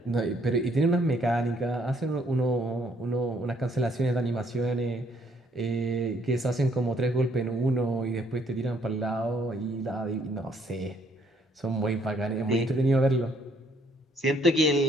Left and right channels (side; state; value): both; normal; correlation 0.66